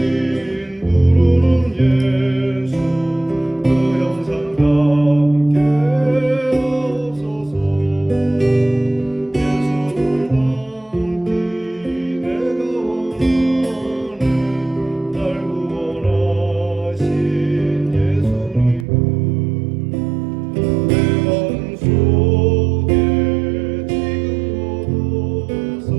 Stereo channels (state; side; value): drops out; left; at 18.9 s